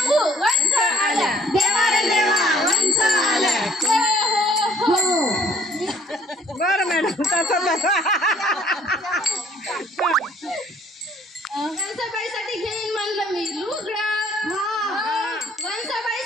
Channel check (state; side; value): normal; both; correlation 0.59